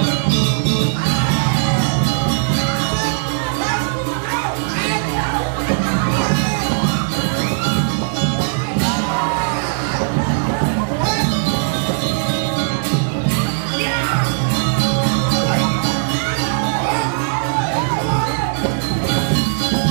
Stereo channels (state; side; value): silent; left; digital silence